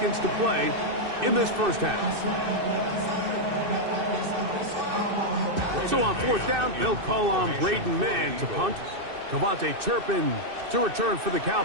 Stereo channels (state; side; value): late; left; 2.6 ms